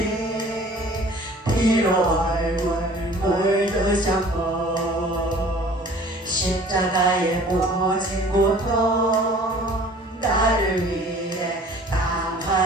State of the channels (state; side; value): normal; both; correlation 0.49